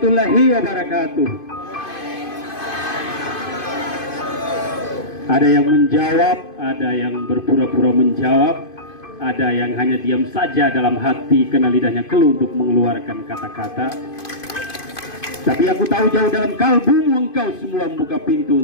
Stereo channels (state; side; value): late; right; 2.5 ms